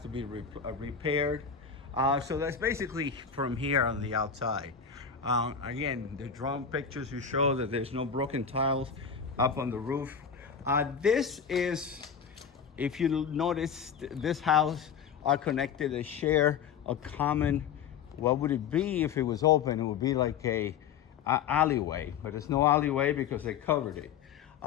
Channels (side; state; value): right; quieter; 7.0 dB